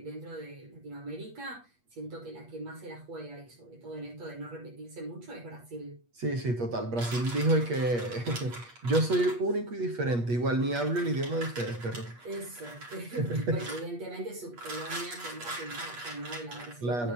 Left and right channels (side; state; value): left; late; 8.4 ms